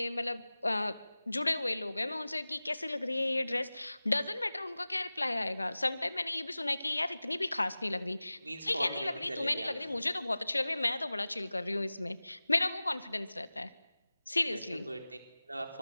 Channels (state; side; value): inverted; both; correlation -0.98